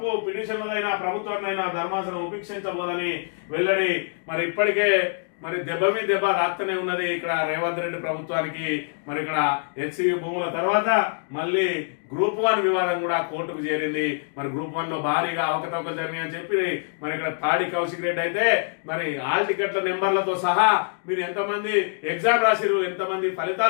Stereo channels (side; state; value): right; silent; digital silence